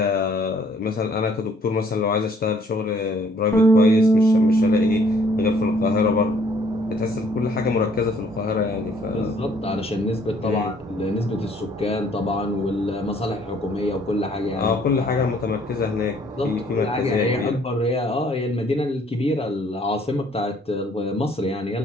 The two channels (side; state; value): both; normal; correlation 0.61